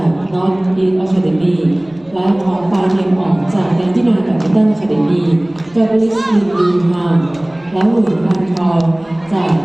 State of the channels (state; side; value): noise; right; rumble, 28 dB below the sound